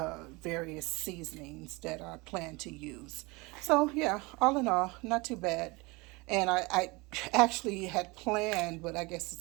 various seasonings that I plan to use. So yeah, all in all, not too bad. And I actually had planned, but I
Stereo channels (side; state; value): left; quieter; 25.3 dB